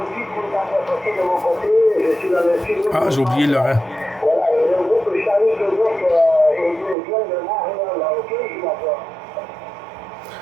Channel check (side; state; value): left; drops out; at 7.0 s